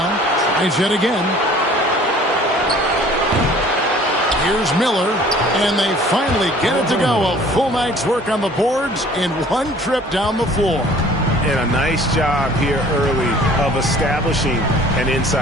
Tries yet again. Here's Miller, and they finally get it to go. A full night's work on the boards in one trip down the floor. And a nice job here early of establishing an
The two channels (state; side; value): normal; both; correlation 0.51